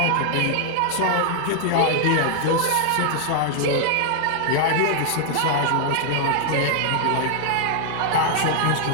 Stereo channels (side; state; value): both; different; correlation 0.00